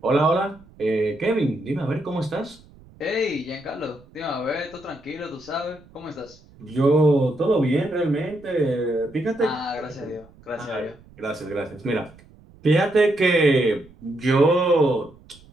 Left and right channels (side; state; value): right; noise; rumble, 25 dB below the sound